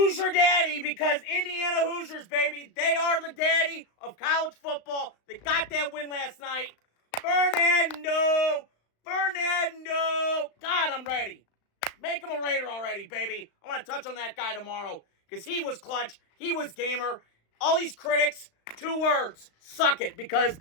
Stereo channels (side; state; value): right; late; 35 ms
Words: Daddy, because Indiana Hoosiers, baby, they are the daddy of college football. They got that win last night. Fernando. God, I'm ready. Make him a Raider already, baby. I want to touch on that guy tomorrow because he was clutch. He was gamer. All these critics, 2 words, suck it, because